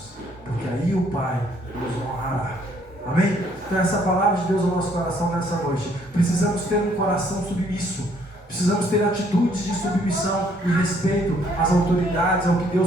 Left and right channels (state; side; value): normal; both; correlation 0.65